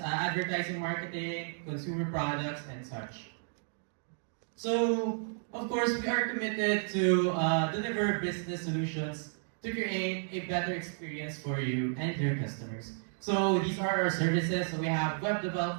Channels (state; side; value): silent; left; digital silence